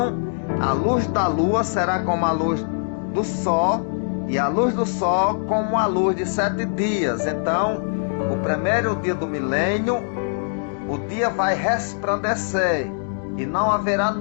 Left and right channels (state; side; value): silent; right; digital silence